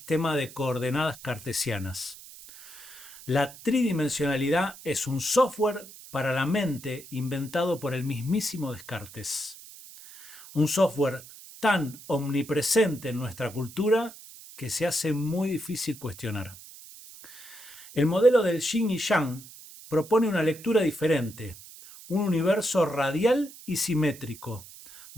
de coordenadas cartesianas. La tridimensionalidad es un software para la mente inventado por el mismísimo Descartes. Un software tan omnipresente en nuestra cultura que se hace muy difícil cuestionar. El modelo del yin y yang propone una lectura diferente, un universo radial y simétrico,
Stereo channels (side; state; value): right; noise; hiss, 18 dB below the sound